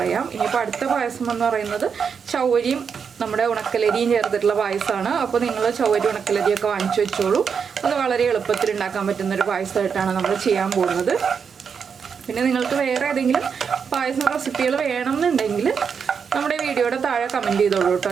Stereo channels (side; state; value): left; quieter; 6.4 dB